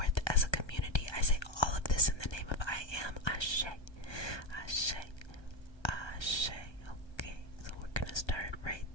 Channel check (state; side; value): late; right; 1.3 ms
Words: as a community. I say all of this in the name of I am. Ashe. Ashe. Ashe. Okay, so we're gonna start right